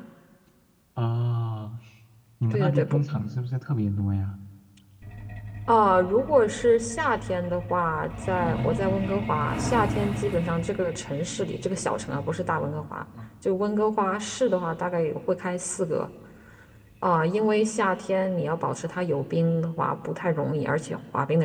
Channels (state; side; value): identical; both; correlation 1.00